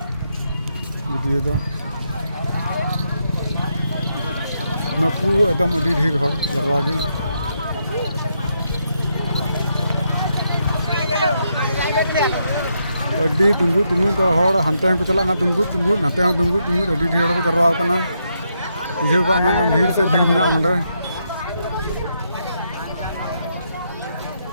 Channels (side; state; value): both; inverted; correlation -0.80